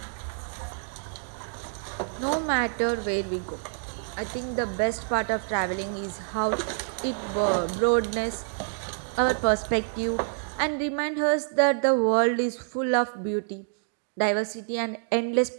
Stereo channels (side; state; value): left; silent; digital silence